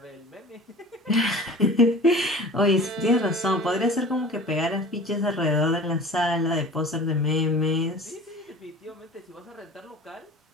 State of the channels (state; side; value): normal; both; correlation 0.41